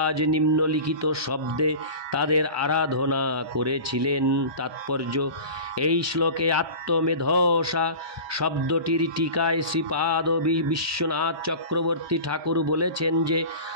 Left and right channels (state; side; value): late; left; 1.2 ms